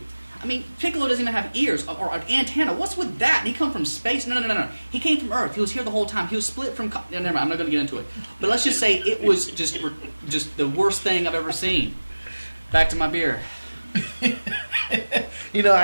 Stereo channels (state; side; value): inverted; both; correlation -1.00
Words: I mean, Piccolo doesn't even have ears or an antenna. What's with that? And he come from space? No. He came from Earth. He was here the whole time. He was split from... No, never mind. I'm not going to get into it. But let's just say it was just the worst thing I've ever seen. Back to my beer. You know,